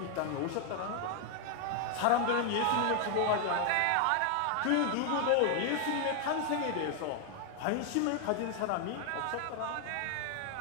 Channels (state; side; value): different; both; correlation 0.00